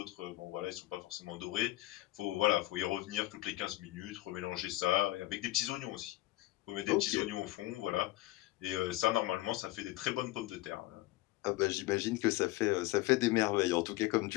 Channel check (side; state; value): right; quieter; 18.0 dB